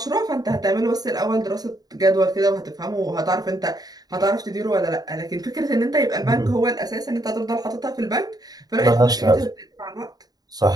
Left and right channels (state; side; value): late; left; 0.19 ms